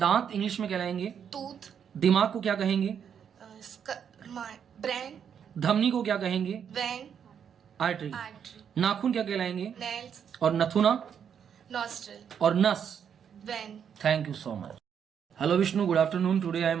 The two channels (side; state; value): left; quieter; 7.9 dB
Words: इंग्लिश में कहलाएंगे। Tooth. दिमाग को क्या कहेंगे? Brain. धमनी को क्या कहेंगे? Vein. आर्टरी। Artery. नाखून क्या कहलाएंगे? Nails. और नथुना Nostril. और नस। Vein. Thank you so much. Hello Vishnu, good afternoon, today I